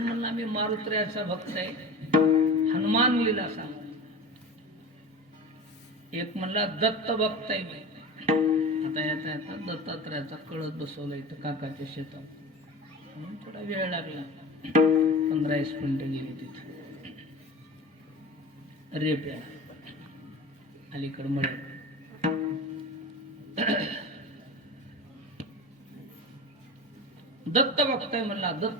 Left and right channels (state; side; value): normal; both; correlation 0.32